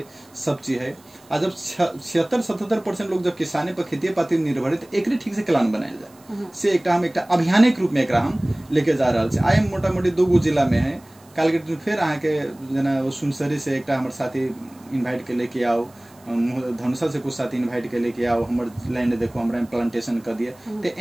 सब चीज है। और जब 76-77% लोग जब किसानी पर खेती पाती निर्भर है तो एक ठीक से प्लान बनाया जाए से एकटा हम एकटा अभियानिक रूप में एकरा हम लेके जा रहा है। आए मोटा मोटी 2 जिला में है काल के दिन फिर अहाँ के जना सुनसरी से एकटा हमर साथी इनवाइट के लेके आओ धनुषा से कुछ साथी इनवाइट के लेके आओ हमर लैंड देखो हमरा प्लांटेशन कर दिए तो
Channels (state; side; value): noise; right; hiss, 28 dB below the sound